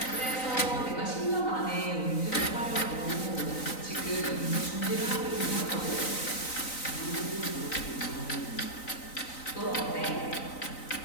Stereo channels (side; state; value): right; late; 3.9 ms